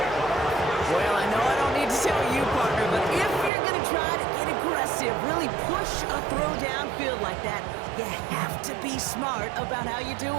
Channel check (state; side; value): drops out; left; at 3.5 s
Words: Well, I know I don't need to tell you, partner, but if you're going to try to get aggressive, really push a throw downfield like that, you have to be smart about how you do